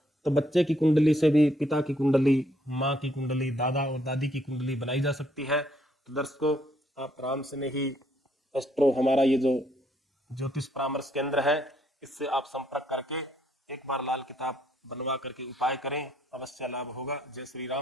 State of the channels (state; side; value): normal; both; correlation 0.70